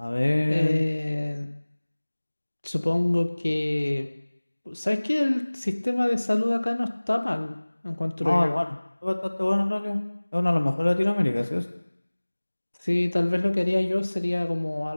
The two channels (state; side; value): inverted; both; correlation -1.00